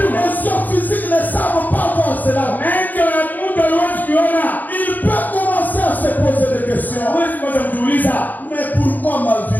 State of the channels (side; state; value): right; late; 0.084 ms